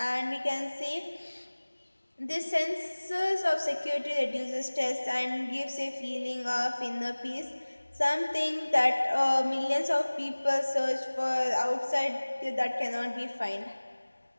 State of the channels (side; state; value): both; inverted; correlation -1.00